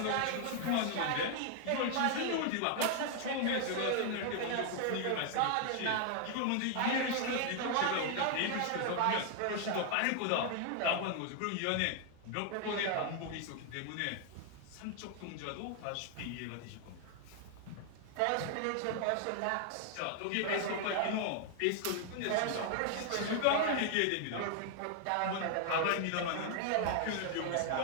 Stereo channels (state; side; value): different; both; correlation 0.00